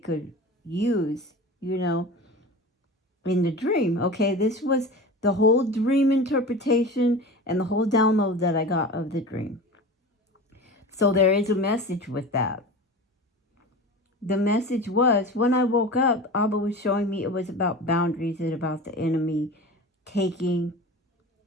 use, in the dream. Okay, this was the whole dream interpretation and the whole download that I got of the dream. So there is a message with that. The message was, when I woke up, Abba was showing me it was about boundaries and about the enemy taking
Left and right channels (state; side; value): normal; both; correlation 0.33